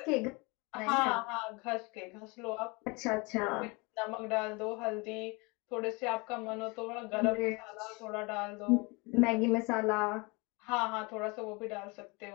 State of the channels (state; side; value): quieter; right; 27.7 dB